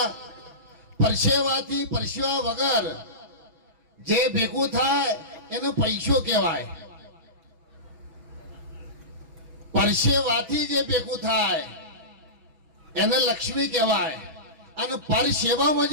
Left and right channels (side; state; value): left; late; 6.1 ms